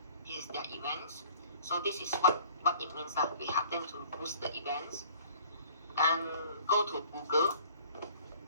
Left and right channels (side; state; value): both; inverted; correlation -0.52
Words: This is their events. So this is what it means that we have them to boost the events. And go to Google.